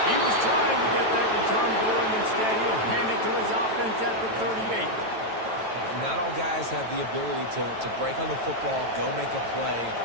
He was trying to get that return going. Instead, he'll hand it to his offense at the 38. Not all guys have the ability to break on the football, go make a play,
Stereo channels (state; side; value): late; left; 9.1 ms